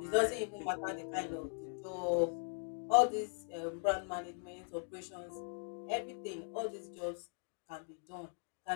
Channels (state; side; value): silent; right; 51 dB below the other